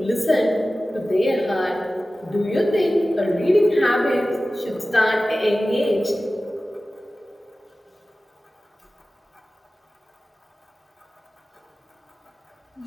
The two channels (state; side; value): normal; both; correlation 0.96